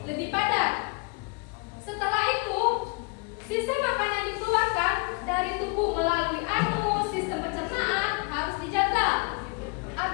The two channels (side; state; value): right; quieter; 31.2 dB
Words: lebih padat. Setelah itu, sisa makanan dikeluarkan dari tubuh melalui sistem pencernaan harus dijaga